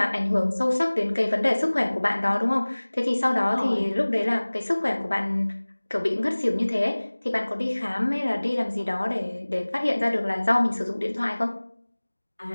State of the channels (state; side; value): inverted; both; correlation -1.00